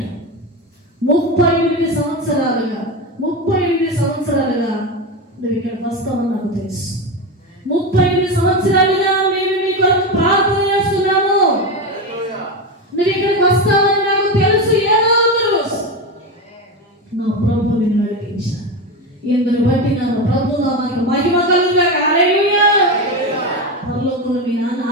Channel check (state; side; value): normal; both; correlation 0.17